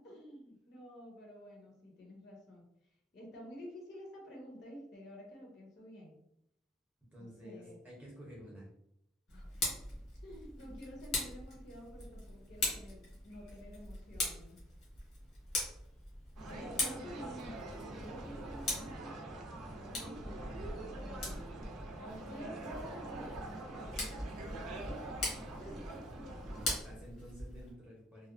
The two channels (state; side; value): normal; both; correlation 0.53